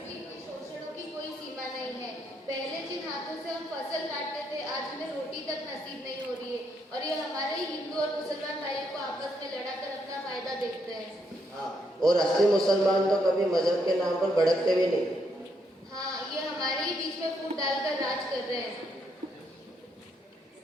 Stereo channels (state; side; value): normal; both; correlation 0.76